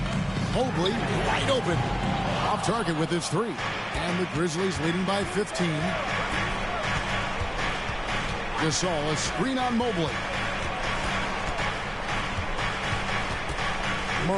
Mobley wide open. Off target with his 3. And the Grizzlies leading by 15. Gasol, a screen on Mobley.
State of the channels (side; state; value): both; identical; correlation 1.00